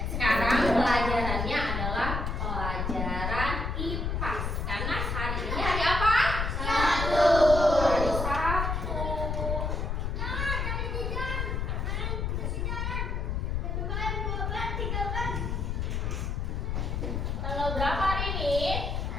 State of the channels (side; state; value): left; noise; rumble, 1 dB below the sound